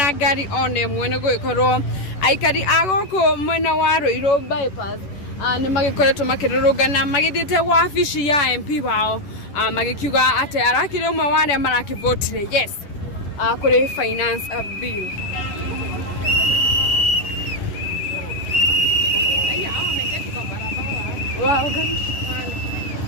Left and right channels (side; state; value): right; late; 10 ms